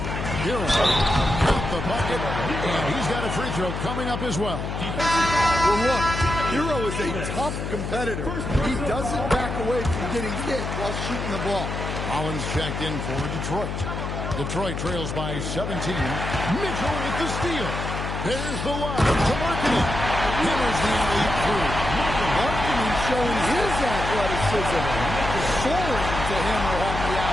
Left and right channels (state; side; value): noise; left; hum, 4 dB below the sound